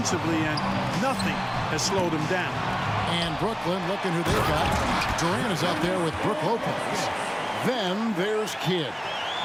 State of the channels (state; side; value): identical; both; correlation 1.00